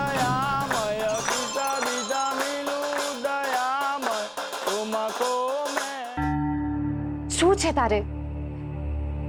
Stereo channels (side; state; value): both; identical; correlation 1.00